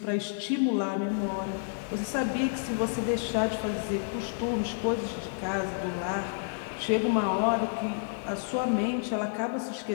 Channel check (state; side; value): silent; right; digital silence